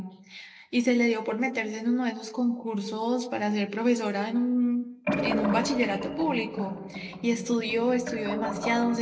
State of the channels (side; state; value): both; identical; correlation 1.00